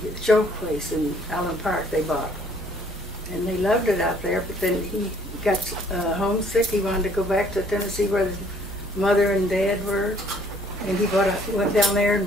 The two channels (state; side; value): normal; both; correlation 0.61